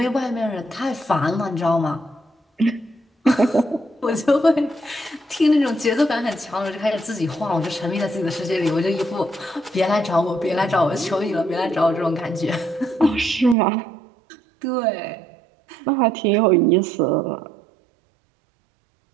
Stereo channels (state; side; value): drops out; left; at 13.6 s